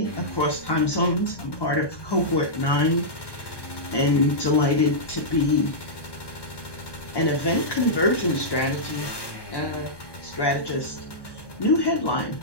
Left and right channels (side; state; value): right; late; 1.2 ms